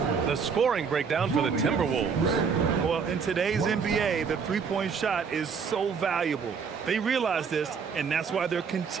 The scoring breakdown for the Timberwolves. Well, in today's NBA, the three-point shot is so valuable. They realize this, and that's why they're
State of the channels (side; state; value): left; quieter; 6.0 dB